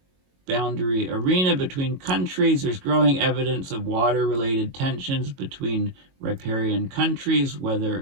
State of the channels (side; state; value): left; late; 22 ms